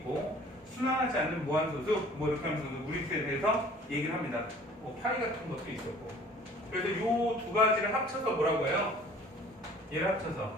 순환하지 않는 무한소수 뭐 이렇게 하면서 무리수에 대해서 얘기를 합니다. 뭐 파이 같은 것도 있었고. 그래서 이 두 가지를 합쳐서 뭐라고 해요? 얘를 합쳐서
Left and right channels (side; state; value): both; normal; correlation 0.50